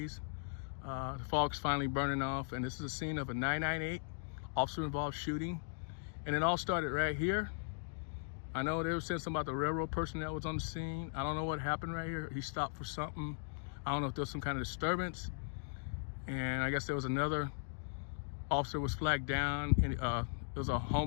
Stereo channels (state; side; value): silent; right; digital silence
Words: The fog's finally burning off, and this is a scene of a 998 officer-involved shooting. And it all started right here. I know they were saying something about the railroad person that was on the scene. I don't know what happened right here. He stopped for something. I don't know if there was some kind of disturbance. And I guess there was another officer was flagged down, and there was a